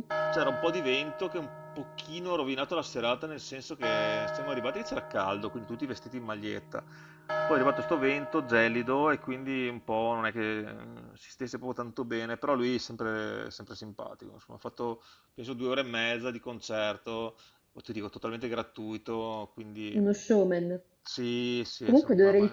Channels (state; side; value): identical; both; correlation 1.00